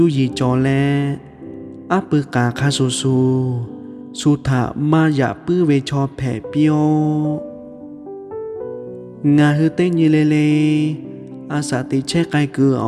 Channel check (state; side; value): identical; both; correlation 1.00